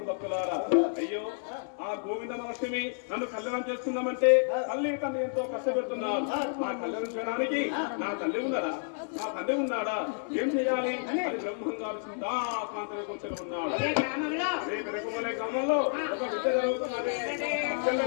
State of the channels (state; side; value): silent; right; 58 dB below the other